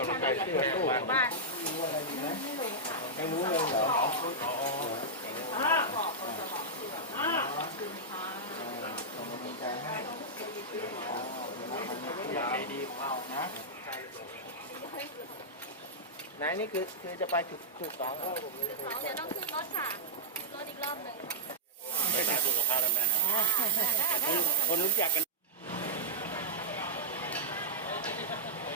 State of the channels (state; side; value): normal; both; correlation -0.08